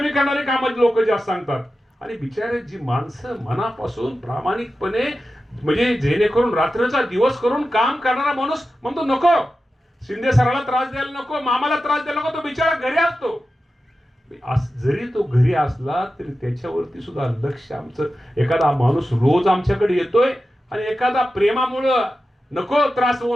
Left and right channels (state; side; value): normal; both; correlation 0.92